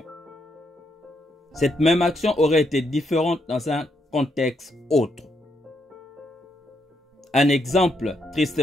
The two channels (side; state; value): both; normal; correlation 0.78